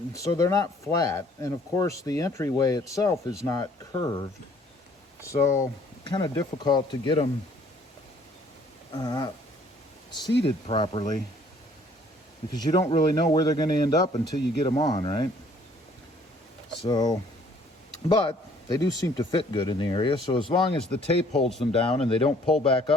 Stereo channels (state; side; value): normal; both; correlation 0.58